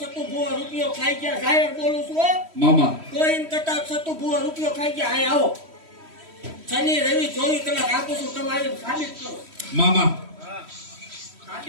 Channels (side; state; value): left; late; 3.1 ms